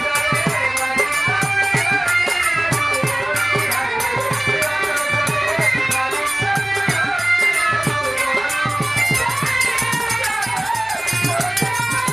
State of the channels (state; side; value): noise; right; hum, 28 dB below the sound